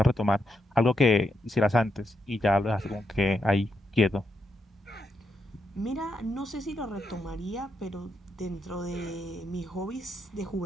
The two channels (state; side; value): normal; both; correlation 0.82